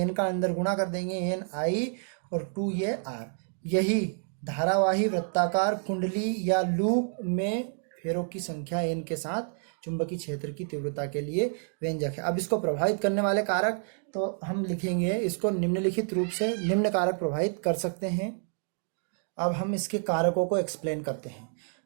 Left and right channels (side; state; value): left; silent; 55 dB below the other